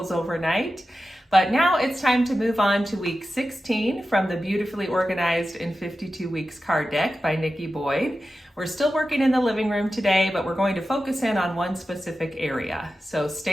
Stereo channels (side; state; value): both; normal; correlation 0.93